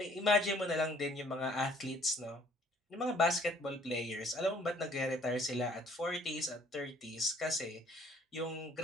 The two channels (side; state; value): both; normal; correlation 0.59